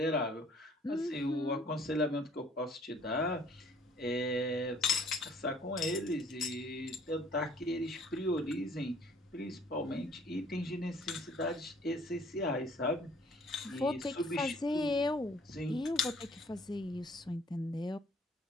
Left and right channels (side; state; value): both; normal; correlation 0.57